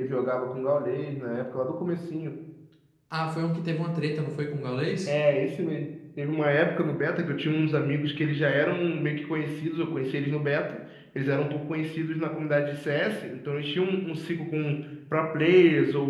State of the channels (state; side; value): identical; both; correlation 1.00